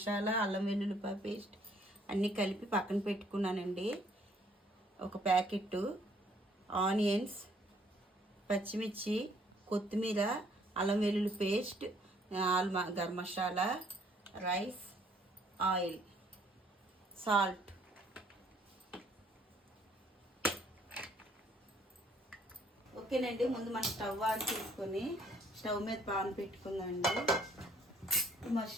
అల్లం వెల్లుల్లిపాయ పేస్ట్ అన్నీ కలిపి పక్కన పెట్టుకున్నానండి. ఒక ప్యాకెట్ ఆనియన్స్, పచ్చిమిర్చి, కొత్తిమీర, అల్లం వెల్లుల్లి paste, garam masala, rice, oil, salt. ఓకేనండి, ముందు మనం స్టవ్ ఆన్ చేసుకొని స్టవ్ మీద పాన్ పెట్టుకుందామండి.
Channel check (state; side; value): normal; both; correlation 0.64